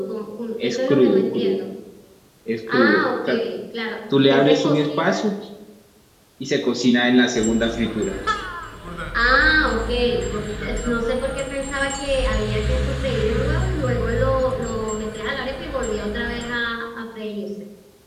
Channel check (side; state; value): both; identical; correlation 1.00